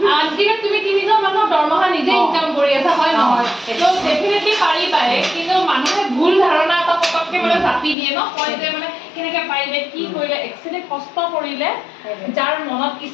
আজিকালি তুমি 3জন মানুহৰ দৰমহা নিজে ইনকাম কৰি আছা হয় নহয় তো ডেফিনেটলি পাৰিবাই কিন্তু মানুহে ভুল ধাৰণা এটা পটককৈ মানে জাপি দিয়ে ন কয় যে মানে কেনেকৈ পাৰিলে কি কৰিলে একচুৱেলি কষ্ট কৰিলে যাৰ মনত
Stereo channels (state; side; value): drops out; right; at 8.0 s